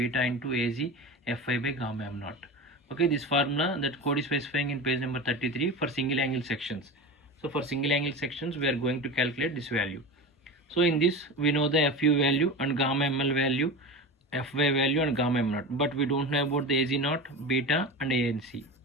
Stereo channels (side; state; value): both; normal; correlation 0.27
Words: into AG FI by gamma m naught. Okay, this formula that code is specifying in page number 33 for single angle sections. So for single angle sections we are going to calculate this value. So in this we know the FU value and gamma ml value, FY value and gamma m naught, but we don't know about the AG naught, beta and ANC.